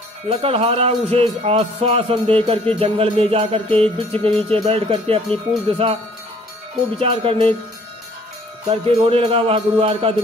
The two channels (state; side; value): normal; both; correlation 0.57